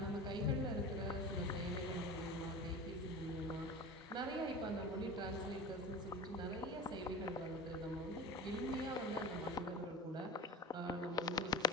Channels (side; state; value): both; normal; correlation 0.32